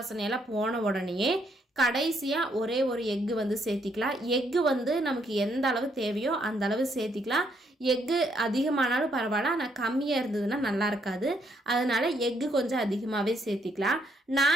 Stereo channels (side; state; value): both; normal; correlation 0.72